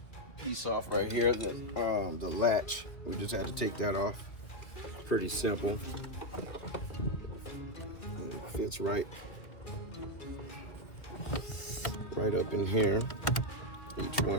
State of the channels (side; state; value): right; late; 2.0 ms